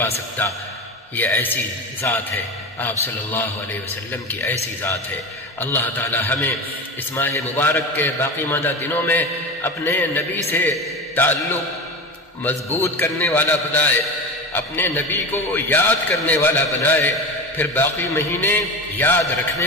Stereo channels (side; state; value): both; normal; correlation 0.26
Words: سکتا۔ یہ ایسی ذات ہے، آپ صلی اللہ علیہ وسلم کی ایسی ذات ہے۔ اللہ تعالی ہمیں اس ماہ مبارک کے باقی ماندہ دنوں میں اپنے نبی سے تعلق مضبوط کرنے والا بنائے، اپنے نبی کو یاد کرنے والا بنائے، پھر باقی مہینے یاد رکھنے